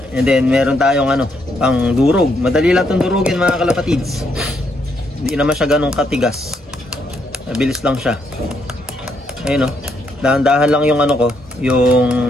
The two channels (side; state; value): both; normal; correlation 0.75